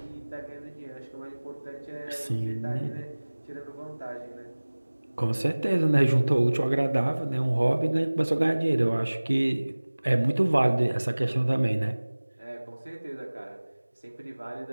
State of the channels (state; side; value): inverted; both; correlation -1.00